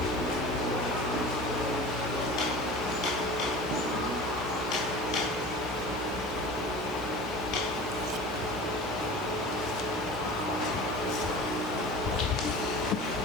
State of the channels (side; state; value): both; normal; correlation 0.37